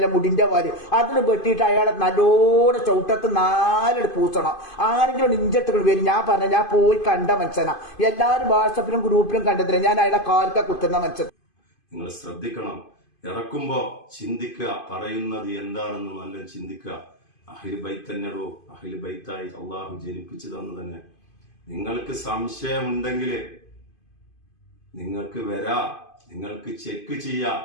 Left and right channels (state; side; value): late; right; 2.5 ms